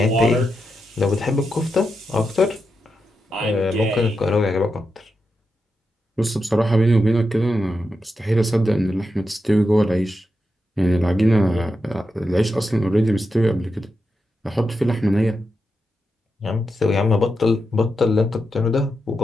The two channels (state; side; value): normal; both; correlation 0.87